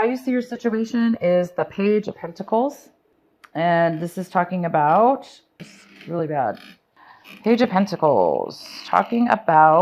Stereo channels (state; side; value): identical; both; correlation 1.00